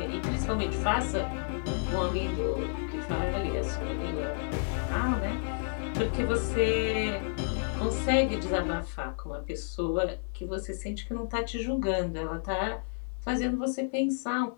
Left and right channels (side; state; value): right; silent; digital silence